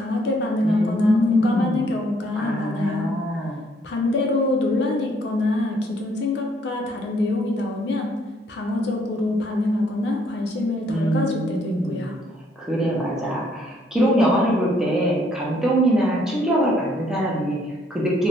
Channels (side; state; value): both; normal; correlation 0.66